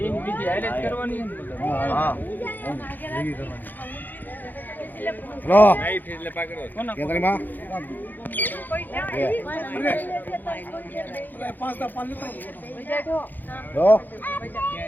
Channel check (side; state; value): right; late; 0.086 ms